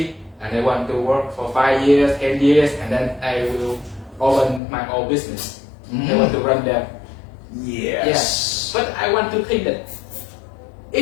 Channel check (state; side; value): drops out; right; at 4.6 s